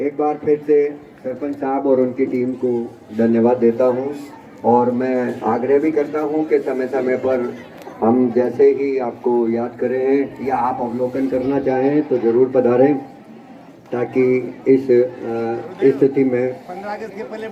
बार फिर से सरपंच साहब और उनकी टीम को धन्यवाद देता हूं और मैं आग्रह भी करता हूं कि समय समय पर हम जैसे ही आपको याद करें या आप अवलोकन करना चाहें तो जरूर पधारें, ताकि इस स्थिति में 15 अगस्त के पहले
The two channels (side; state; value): both; identical; correlation 1.00